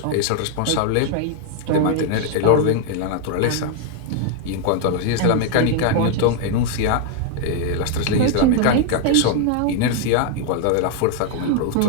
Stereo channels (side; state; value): both; different; correlation 0.00